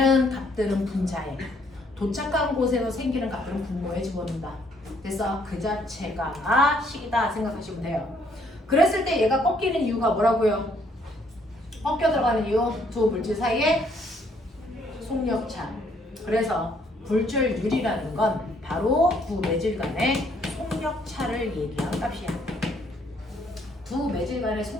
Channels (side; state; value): both; normal; correlation 0.66